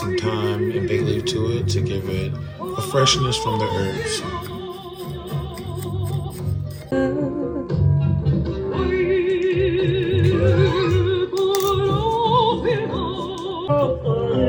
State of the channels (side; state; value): both; identical; correlation 1.00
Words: thyme and bay leaf to it to give it a freshness from the herbs.